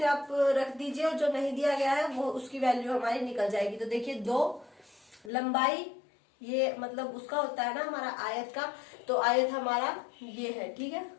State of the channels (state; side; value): drops out; right; at 5.3 s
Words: आप रख दीजिए और जो नहीं दिया गया है वो उसकी वैल्यू हमारी निकल जाएगी। तो देखिए, 2 लंबाई, ये मतलब उसका होता है ना हमारा आयत का, तो आयत हमारा ये है, ठीक है।